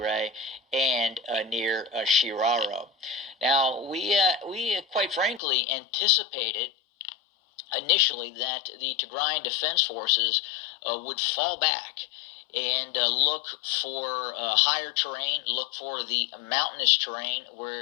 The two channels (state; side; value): drops out; right; at 5.4 s